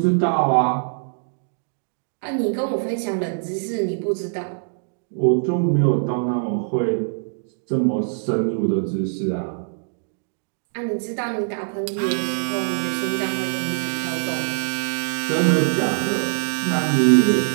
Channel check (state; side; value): silent; left; digital silence